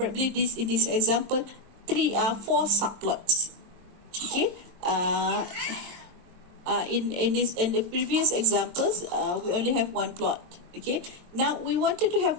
this in this example 4 subplots. Okay, in the previous examples we only have 1 plot. Okay, now we wanted to have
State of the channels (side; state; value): left; late; 22 ms